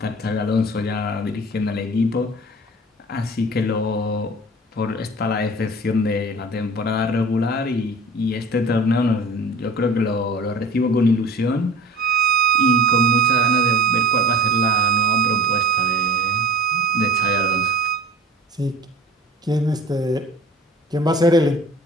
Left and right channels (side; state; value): both; normal; correlation 0.40